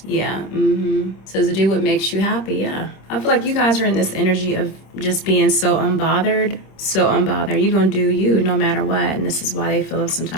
Yeah. Says to do what makes you happy. Yeah. I feel like you guys are in this energy of just being so unbothered. You're gonna do you no matter what, and this is why they feel some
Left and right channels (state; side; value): late; right; 26 ms